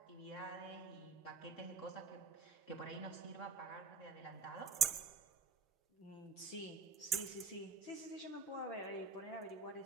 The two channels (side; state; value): left; quieter; 5.0 dB